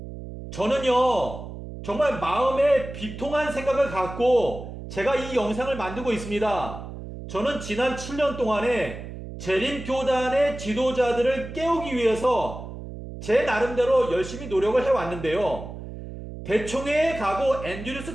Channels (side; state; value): right; noise; hum, 11 dB below the sound